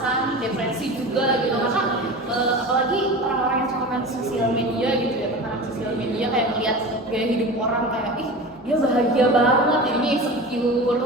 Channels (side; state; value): both; normal; correlation 0.32